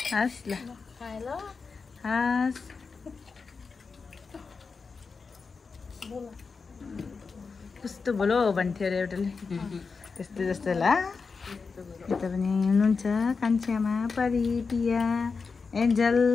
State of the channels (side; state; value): right; quieter; 4.8 dB